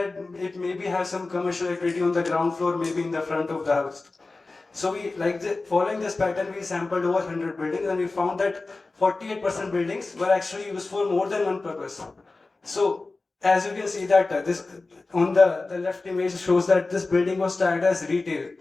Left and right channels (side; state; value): right; quieter; 3.5 dB